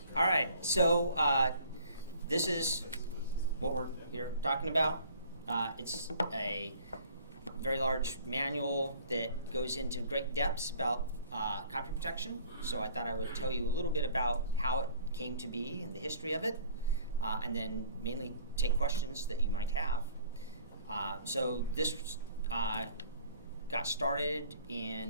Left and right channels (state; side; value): inverted; both; correlation -0.53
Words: All right, so this is what we're here talking about. It's a very large manual that goes into great depths about copy protection. So I thought I would tell you a little bit about how it came to be and the history of it, and then mainly take questions that you might have. So this got started